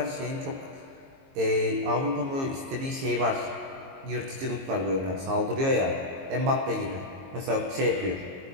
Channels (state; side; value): late; left; 22 ms